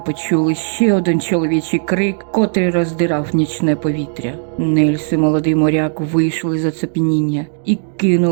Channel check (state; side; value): silent; left; digital silence